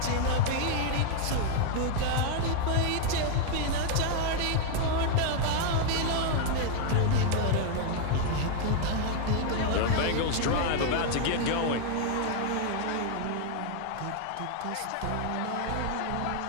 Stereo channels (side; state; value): both; different; correlation 0.00